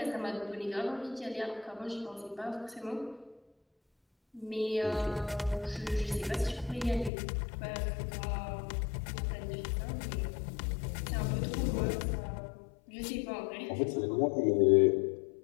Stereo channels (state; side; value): drops out; right; at 7.1 s